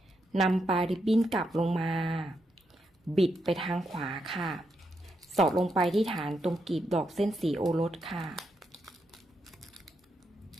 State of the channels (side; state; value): both; normal; correlation 0.82